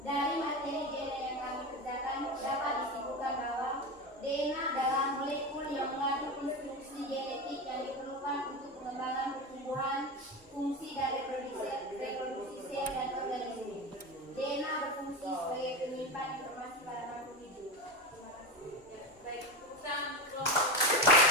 Dari materi DNA yang kami kerjakan dapat disimpulkan bahwa DNA adalah molekul yang mengandung instruksi genetik yang diperlukan untuk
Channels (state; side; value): normal; both; correlation 0.20